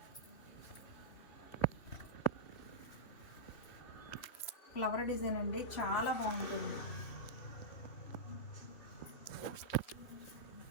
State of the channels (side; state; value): right; late; 3.0 ms